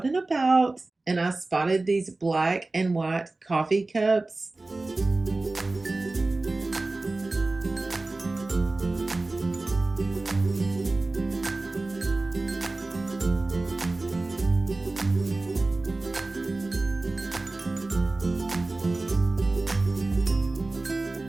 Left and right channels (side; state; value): left; quieter; 3.2 dB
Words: and about and I spotted these black and white coffee cups.